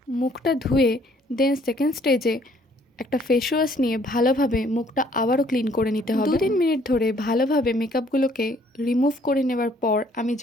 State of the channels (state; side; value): normal; both; correlation 0.62